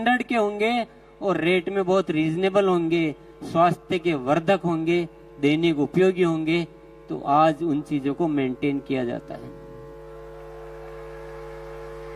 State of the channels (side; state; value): both; identical; correlation 1.00